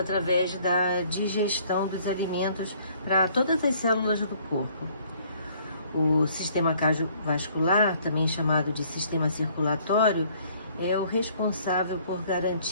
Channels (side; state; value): both; inverted; correlation -0.60